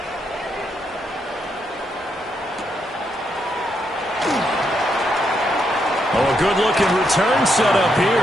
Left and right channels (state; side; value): normal; both; correlation 0.79